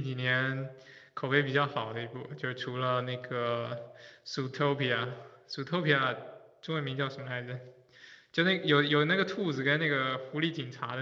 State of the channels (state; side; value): identical; both; correlation 1.00